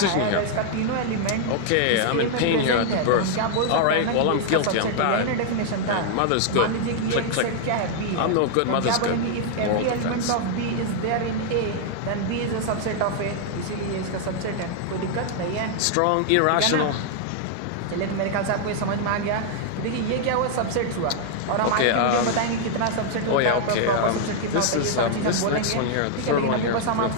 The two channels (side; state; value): both; different; correlation 0.00